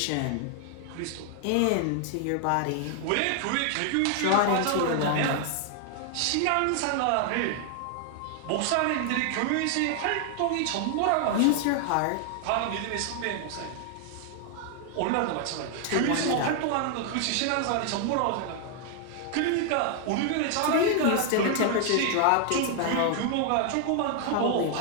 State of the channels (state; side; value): different; both; correlation 0.00